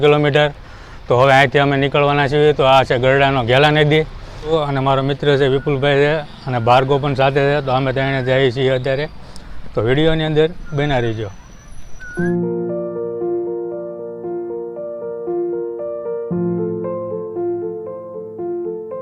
કિલોમીટર. તો હવે અહીંથી અમે નીકળવાના છીએ. તો આ છે ગરડાનો ઘેલા નદી અને મારો મિત્ર છે વિપુલભાઈ છે અને ભાર્ગવ પણ સાથે છે. તો અમે ત્યાં જઈએ છીએ અત્યારે. તો વિડીયોની અંદર બના રહીજો.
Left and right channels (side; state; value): both; identical; correlation 1.00